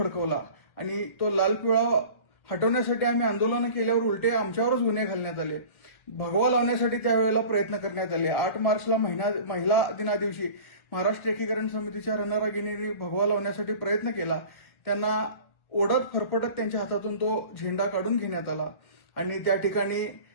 आणि तो लाल पिवळा हटवण्यासाठी आम्ही आंदोलनं केल्यावर उलटे आमच्यावरच गुन्हे घालण्यात आले. भगवा लावण्यासाठी त्यावेळेला प्रयत्न करण्यात आले. 8 मार्चला महिला दिनादिवशी महाराष्ट्र एकीकरण समितीच्या रणरागिणींनी भगवा लावण्यासाठी प्रयत्न केला. त्यांना ओढत फरफटत त्यांच्या हातातून तो झेंडा काढून घेण्यात आला आणि त्या ठिकाणी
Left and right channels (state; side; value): late; right; 1.5 ms